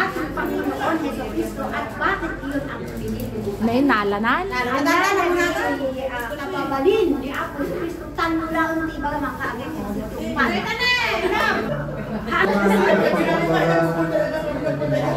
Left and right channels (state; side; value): identical; both; correlation 1.00